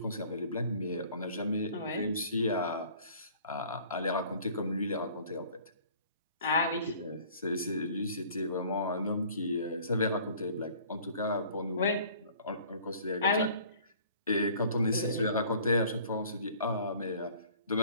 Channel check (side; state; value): both; inverted; correlation -0.52